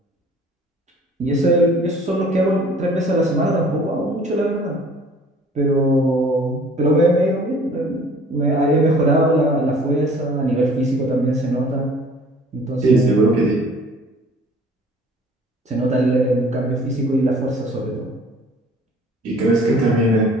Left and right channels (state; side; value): normal; both; correlation 0.51